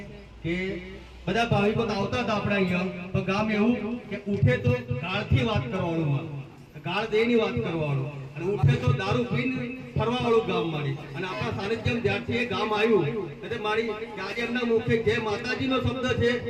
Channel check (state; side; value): identical; both; correlation 1.00